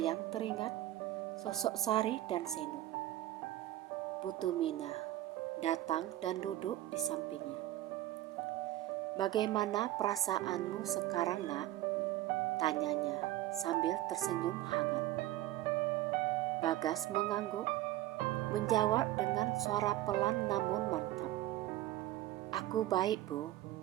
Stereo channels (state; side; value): quieter; left; 15.0 dB